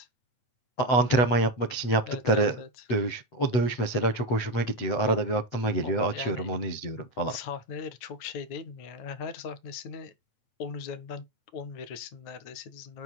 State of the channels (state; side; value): late; right; 8.0 ms